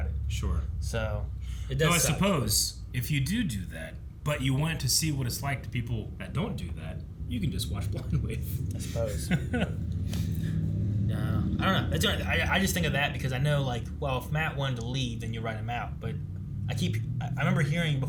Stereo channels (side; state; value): both; identical; correlation 1.00